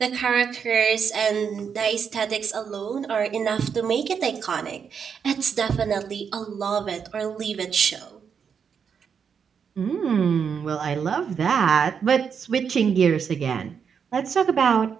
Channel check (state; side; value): quieter; left; 6.8 dB